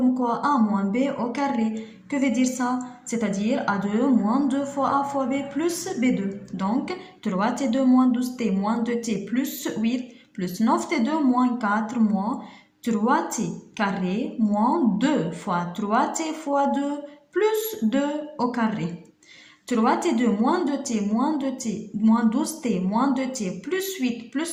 quoi? A moins B au carré. Que veut dire ça? C'est-à-dire A2 moins 2 fois A fois B plus B2. Donc, 3T2 moins 12T moins 2T plus 8 plus 9T2 moins 4 moins 3T carré moins 2 fois 3T fois 2 plus 2 au carré. 3T2 moins 2T moins 2T moins 12T moins 2T plus 8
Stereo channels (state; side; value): identical; both; correlation 1.00